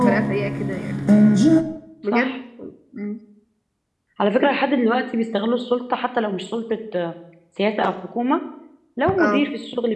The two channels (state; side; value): identical; both; correlation 1.00